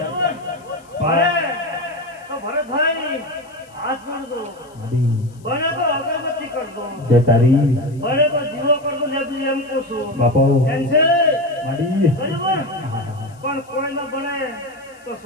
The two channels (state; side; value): noise; left; hiss, 29 dB below the sound